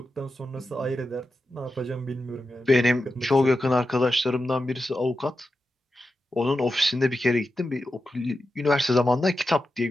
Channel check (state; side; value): normal; both; correlation 0.90